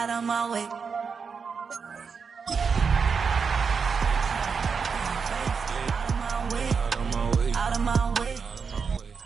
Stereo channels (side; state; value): left; quieter; 5.7 dB